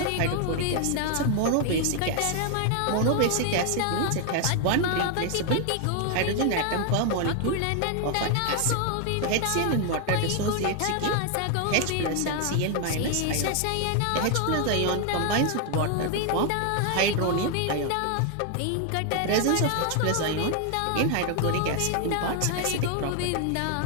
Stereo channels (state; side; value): different; both; correlation 0.00